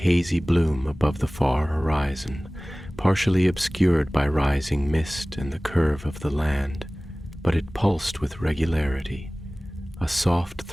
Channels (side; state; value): both; normal; correlation 0.98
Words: bloom above the far horizon, partially obscured by rising mist and the curve of the land, but it pulsed with regularity, a soft